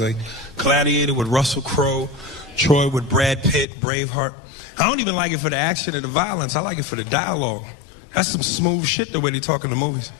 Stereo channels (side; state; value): right; drops out; at 3.7 s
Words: Gladiator with Russell Crowe, Troy with Brad Pitt, Braveheart. I don't even like it for the action and the violence. I like it for the dialogue. That's some smooth shit, the way they talk in the movies.